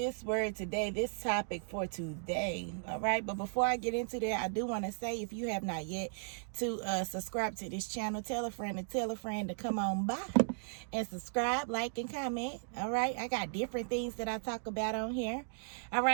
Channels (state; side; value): silent; left; digital silence